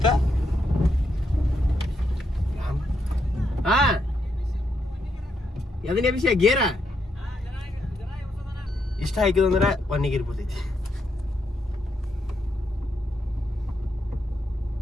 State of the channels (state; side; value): normal; both; correlation 0.79